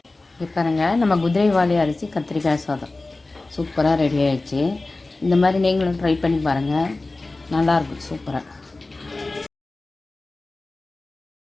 இப்போ பாருங்கள், நம்ம குதிரைவாலி அரிசி கத்திரிக்காய் சாதம் சூப்பராக ரெடி ஆகிடுச்சு. இந்த மாதிரி நீங்களும் ட்ரை பண்ணி பாருங்கள், நல்லாயிருக்கும், சூப்பராக.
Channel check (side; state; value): right; quieter; 3.2 dB